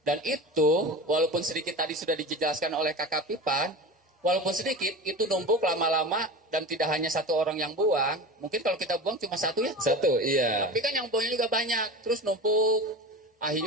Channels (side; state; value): both; normal; correlation 0.31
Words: Dan itu walaupun sedikit tadi sudah dijelaskan oleh kakak Pipan, walaupun sedikit itu numpuk lama-lama dan tidak hanya satu orang yang buang. Mungkin kalau kita buang cuma satu ya. Satu, iya. Tapi kan yang buangnya juga banyak, terus numpuk.